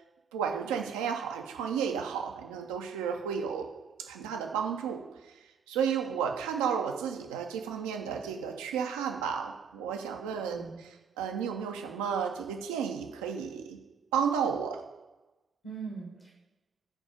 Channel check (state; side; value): quieter; left; 6.9 dB